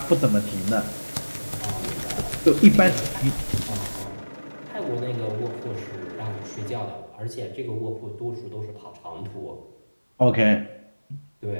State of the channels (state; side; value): inverted; both; correlation -1.00